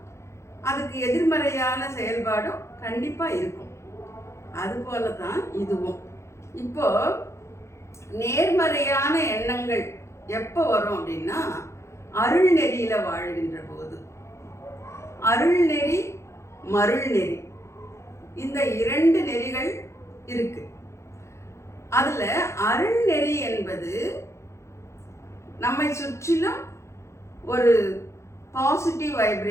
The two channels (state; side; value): late; right; 0.14 ms